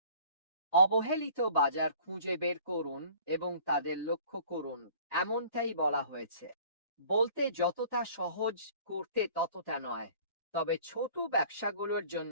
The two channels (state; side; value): inverted; both; correlation -0.50